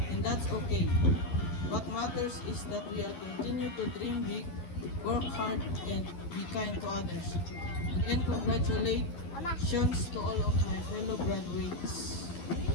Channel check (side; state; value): right; late; 12 ms